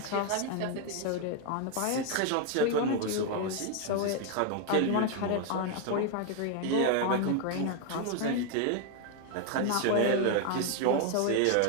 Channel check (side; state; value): both; different; correlation 0.01